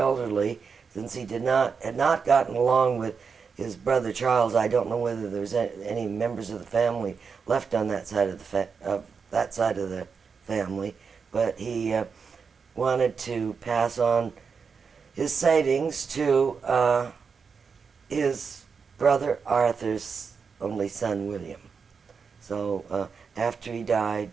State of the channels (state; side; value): quieter; left; 5.6 dB